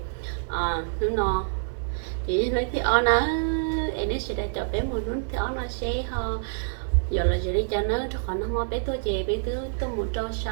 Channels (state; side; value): silent; left; digital silence